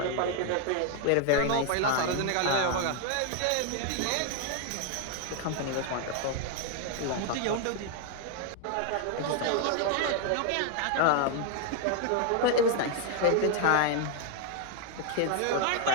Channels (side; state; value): both; different; correlation 0.01